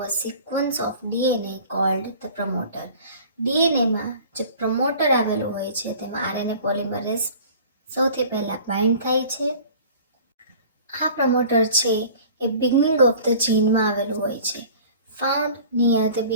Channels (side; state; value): both; inverted; correlation -0.46